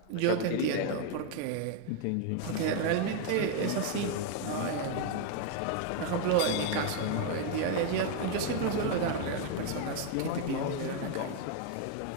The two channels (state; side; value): different; both; correlation 0.01